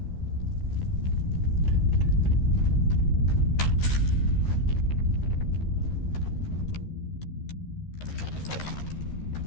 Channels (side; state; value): right; late; 13 ms